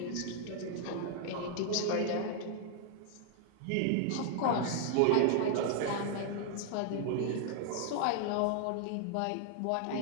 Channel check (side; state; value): both; different; correlation 0.00